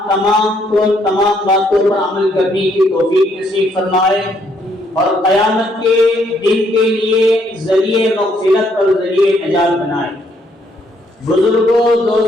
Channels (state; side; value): normal; both; correlation 0.70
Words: تمام کو تمام باتوں پر عمل کرنے کی توفیق نصیب فرمائے اور قیامت کے دن کے لیے ذریعہ مغفرت اور ذریعہ نجات بنائے۔ بزرگوں،